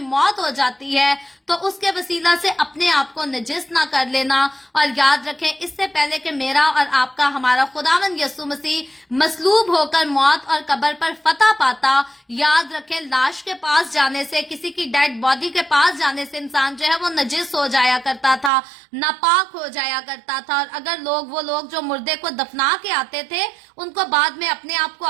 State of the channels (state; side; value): drops out; left; at 18.5 s